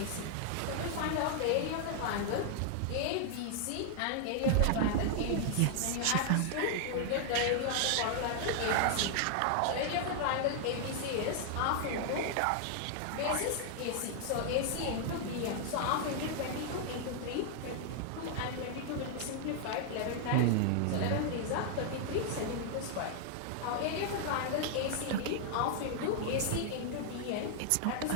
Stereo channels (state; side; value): different; both; correlation -0.01